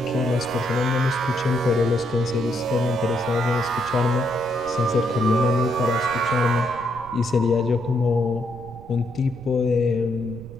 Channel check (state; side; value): noise; right; rumble, 18 dB below the sound